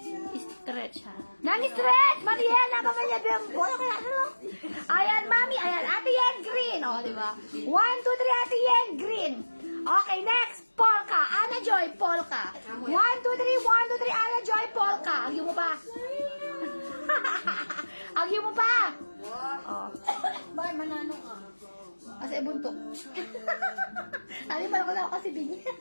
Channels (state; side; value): inverted; both; correlation -1.00